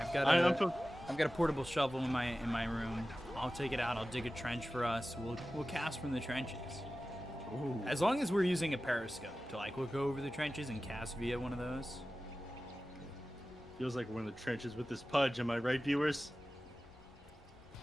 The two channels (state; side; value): normal; both; correlation 0.95